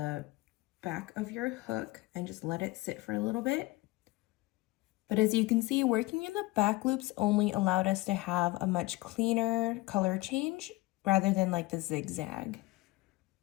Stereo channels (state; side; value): quieter; right; 20.5 dB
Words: back of your hook and just let it sit for a little bit. But as you can see, working in the back loops only allowed us to have a much cleaner color change rather than like the zigzag.